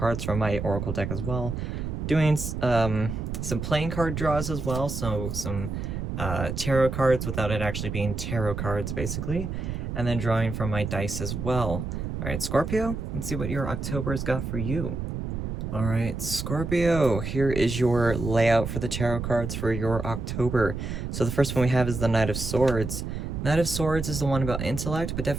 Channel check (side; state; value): right; noise; rumble, 4 dB below the sound